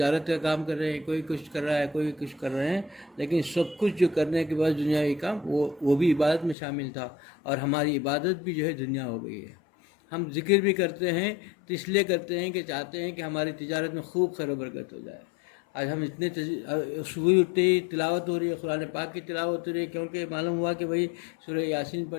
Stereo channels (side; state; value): right; drops out; at 6.6 s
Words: کا کام کر رہے ہیں، کوئی کچھ کر رہا ہے، کوئی کچھ کر رہے ہیں، لیکن سب کچھ جو کرنے کے بعد دنیاوی کام وہ بھی عبادت میں شامل تھا، اور ہماری عبادت بھی جو ہے دنیا ہو گئی ہے۔ ہم ذکر بھی کرتے ہیں تو اس لیے کرتے ہیں کہ چاہتے ہیں کہ ہماری تجارت میں خوب خیر و برکت ہو جائے۔ آج ہم اتنے صبح اٹھتے ہی تلاوت ہو رہی ہے، قرآن پاک کی تلاوت ہو رہی ہے، کیونکہ معلوم ہوا کہ بھئی سورہ یاسین